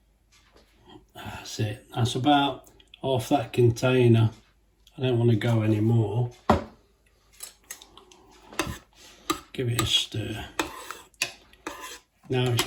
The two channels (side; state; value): both; identical; correlation 1.00